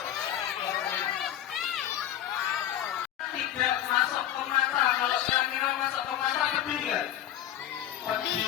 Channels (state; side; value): quieter; right; 11.6 dB